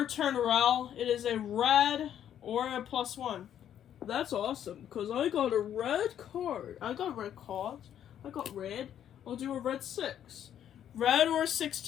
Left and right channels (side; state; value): right; quieter; 10.1 dB